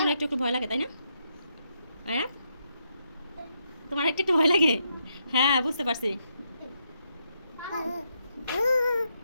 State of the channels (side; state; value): both; inverted; correlation -0.79